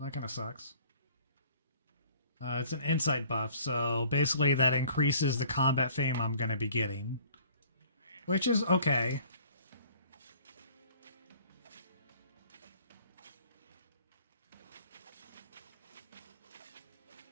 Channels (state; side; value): inverted; both; correlation -0.53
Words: that kind of sucks. It's an insight buff, so basically that increases the combat fame I'm gonna be getting. Which is okay.